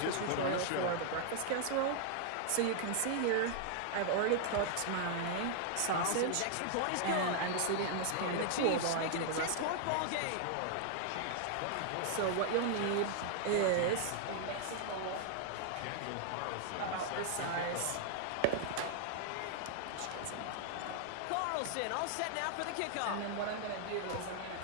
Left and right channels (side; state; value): both; different; correlation -0.01